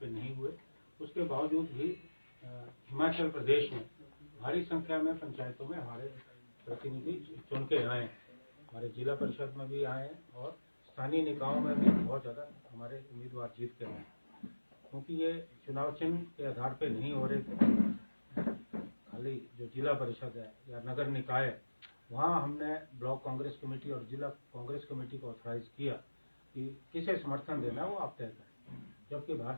नहीं हुए, उसके बावजूद भी हिमाचल प्रदेश में भारी संख्या में पंचायतों में हमारे प्रतिनिधि चुन के आए हैं, हमारे जिला परिषद में भी आए हैं, और स्थानीय निकायों में भी बहुत ज़्यादा हमारे उम्मीदवार जीत के आए हैं। क्योंकि ये चुनाव चिन्ह के आधार पे नहीं हो रहे थे, खाली जो जिला परिषद है या नगर निकाय है वहाँ हमने ब्लॉक कांग्रेस कमेटी और जिला कांग्रेस कमेटी को ऑथराइज किया कि किसे समर्थन देना है वो आप तय करें, जबकि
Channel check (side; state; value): both; inverted; correlation -1.00